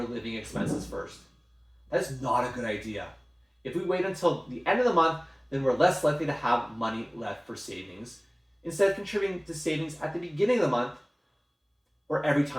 living expenses first. That's not a good idea. If we wait until the end of the month, then we're less likely to have money left for savings. Instead of contributing to savings at the beginning of the month or every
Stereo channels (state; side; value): identical; both; correlation 1.00